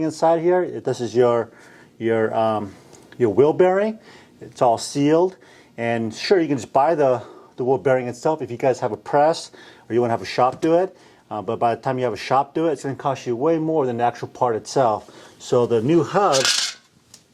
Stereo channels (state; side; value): identical; both; correlation 1.00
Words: inside here. This is your wheel bearing. It's all sealed, and sure, you can just buy the wheel bearing itself if you guys have a press or you want to have a shop do it. But by the time you have a shop do it, it's going to cost you way more than the actual part itself. So the new hub